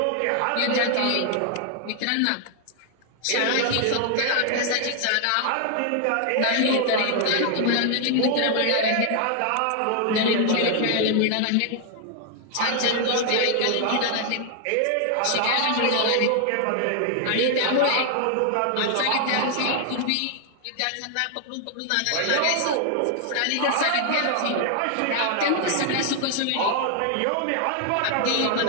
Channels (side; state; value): both; different; correlation 0.00